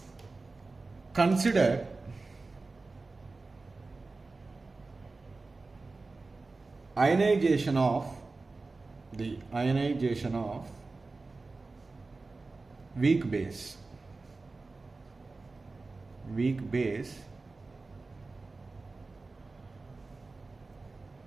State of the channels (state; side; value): quieter; left; 3.7 dB